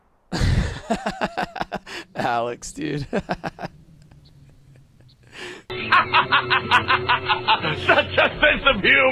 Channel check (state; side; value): identical; both; correlation 1.00